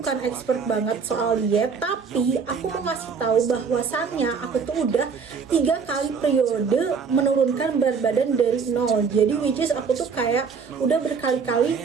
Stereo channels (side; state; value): left; quieter; 5.7 dB